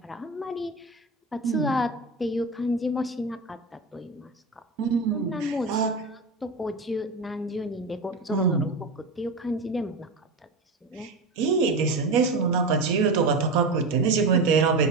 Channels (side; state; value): left; quieter; 3.2 dB